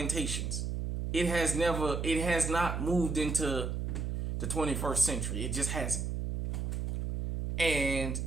It has not moved into the 21st century. It just hasn't. And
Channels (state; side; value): noise; right; hum, 2 dB below the sound